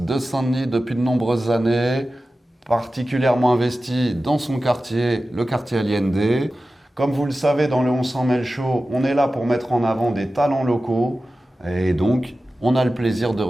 Saint-Denis depuis de nombreuses années, particulièrement investie dans son quartier, le quartier Allende. Comme vous le savez, dans le On s'en mêle show, on est là pour mettre en avant des talents locaux et donc on a le plaisir de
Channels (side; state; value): both; normal; correlation 0.94